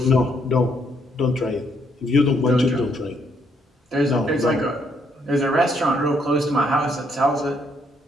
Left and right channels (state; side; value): normal; both; correlation 0.72